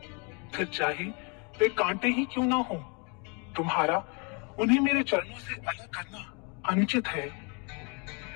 फिर चाहे वे कांटे ही क्यों ना हो, तुम्हारा उन्हें मेरे चरणों से अलग करना अनुचित है।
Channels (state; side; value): quieter; right; 33.8 dB